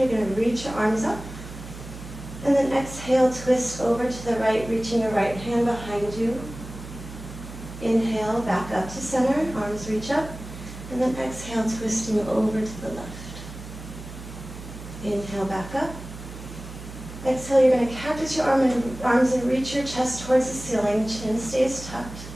going to reach your arms up. And then exhale, twist over to the right, reaching your right hand behind you. Inhale, back up to center, arms reach up. And then exhale, twisting over to the left. Inhale, back up. Exhale, you're going to cactus your arms and reach your chest towards the ceiling. Chin stays tucked.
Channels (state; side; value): noise; right; hum, 13 dB below the sound